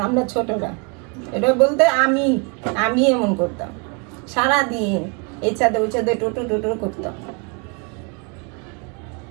আমরা ছোটরা। এটা বলতে আমি এমন করতাম সারাদিন, এই ছাদে ওই ছাদে টোটো টোটো করতাম।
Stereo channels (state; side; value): quieter; left; 34.4 dB